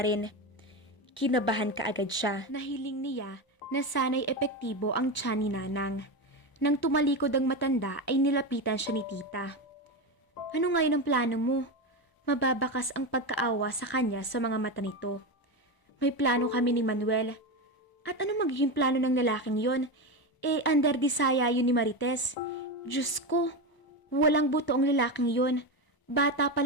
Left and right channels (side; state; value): right; late; 1.0 ms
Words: rin. Kinabahan ka agad siya. Nahiling niya na sana'y epektibo ang tiyan ni Nanang. Nang tumalikod ang matanda ay nilapitan siya ni tita. Ano ngayon ang plano mo? Mababakas ang pagkaawa sa kanya sa mga mata nito. May plano kami ni Manuel. At ano magiging plano ng lalaking yon? Under disaya yun ni Marites. Diyos ko, walang buto ang lalaking yon. Bata pa